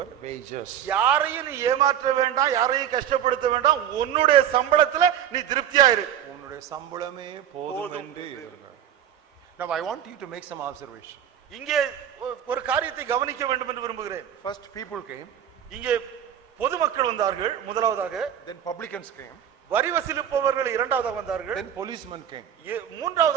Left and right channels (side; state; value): left; quieter; 9.9 dB